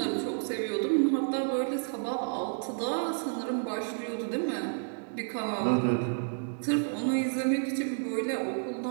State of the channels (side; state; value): left; silent; digital silence